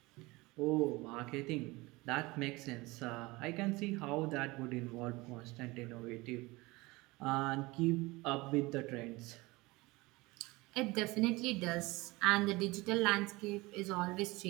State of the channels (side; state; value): left; quieter; 22.3 dB